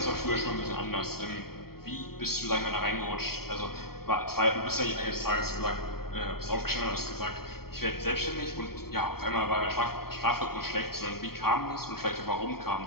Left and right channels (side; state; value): right; late; 0.95 ms